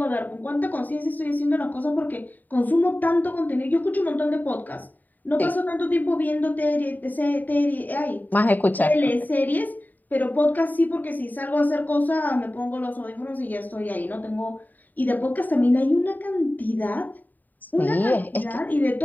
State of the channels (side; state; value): right; late; 0.085 ms